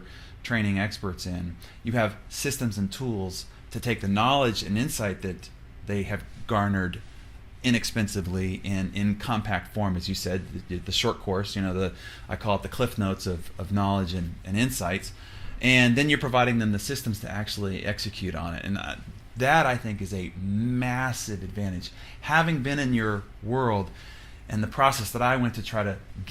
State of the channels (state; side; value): identical; both; correlation 1.00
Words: training experts in, you have systems and tools to take the knowledge and insight that they have garnered inexpensively and in compact form, as you said, the short course, I call it the cliff notes of knowledge and insights, and then you're providing them the systems to actually execute on it. And that, I think, is a massive advantage. Having been in your world and the process that I went to try to